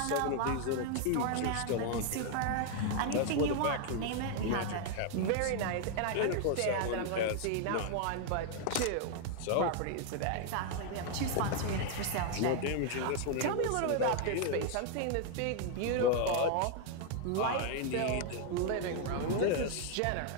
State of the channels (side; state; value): both; different; correlation 0.00